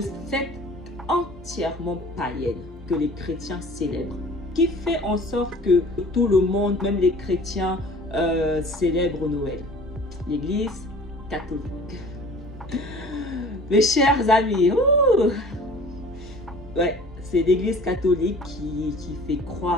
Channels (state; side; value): normal; both; correlation 0.46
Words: fête entièrement païenne que les chrétiens célèbrent. Qui fait en sorte que tout le monde, même les chrétiens, célèbrent Noël? L'Église catholique. Mes chers amis, ouais, c'est l'Église catholique qui fait